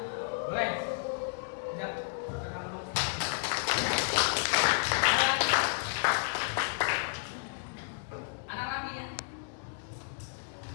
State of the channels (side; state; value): right; silent; digital silence